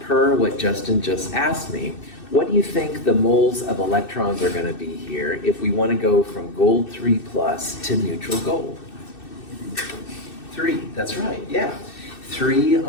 what Justin just asked me. What do you think the moles of electrons are going to be here if we want to go from gold 3 plus to neutral gold? 3, that's right, yeah. 3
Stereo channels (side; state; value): right; late; 2.6 ms